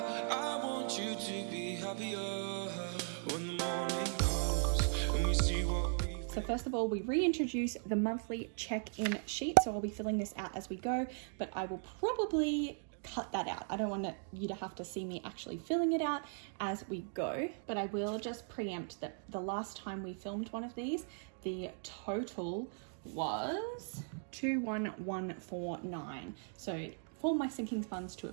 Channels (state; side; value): silent; left; 52 dB below the other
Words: So first of all, we reintroduce the monthly check-in sheet. So I'll be filling this out as we go, but I will probably cut that out. I don't want you to have to see me actually filling it out as we go, but I will just preempt that the last time we filmed one of these, the total was 21149. So for my sinking funds to